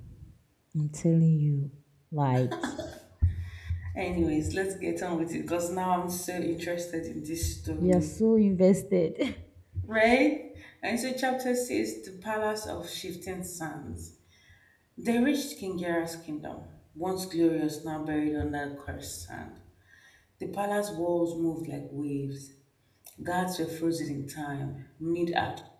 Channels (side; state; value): both; identical; correlation 1.00